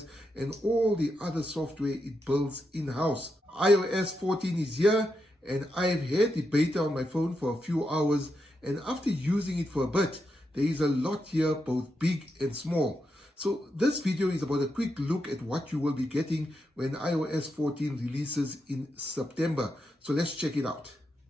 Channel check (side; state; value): both; normal; correlation 0.84